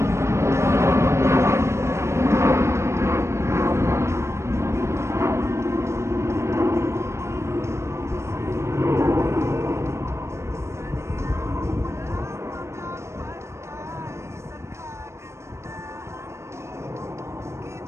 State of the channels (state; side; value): late; left; 0.13 ms